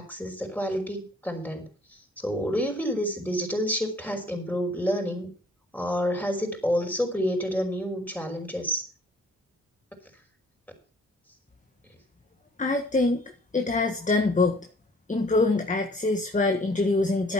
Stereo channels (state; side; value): normal; both; correlation 0.58